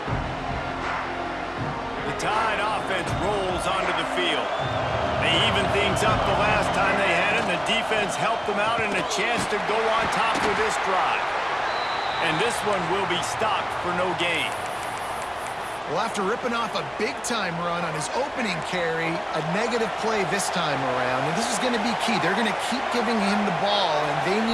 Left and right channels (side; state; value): both; identical; correlation 1.00